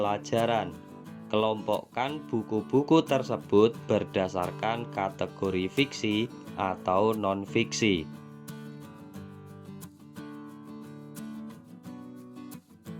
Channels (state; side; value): identical; both; correlation 1.00